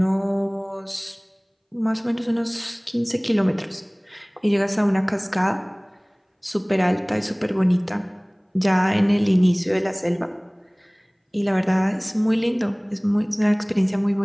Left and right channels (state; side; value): identical; both; correlation 1.00